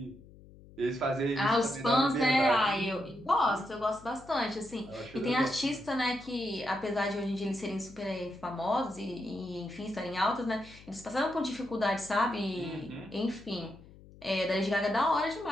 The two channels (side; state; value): left; noise; hum, 21 dB below the sound